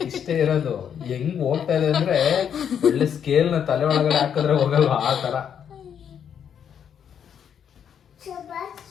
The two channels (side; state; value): right; quieter; 8.3 dB